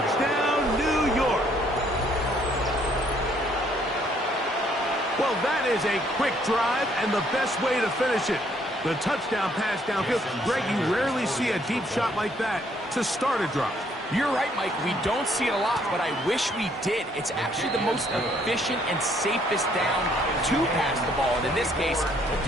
New York. Well, that is a quick drive and the best way to finish it. The touchdown pass downfield. Greg, you rarely see a deep shot like that to start a drive. You're right, Mike. We don't see it a lot, but I wish we did. It's actually the most efficient and safest down to pass the ball. And in this case, the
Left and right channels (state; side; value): normal; both; correlation 0.66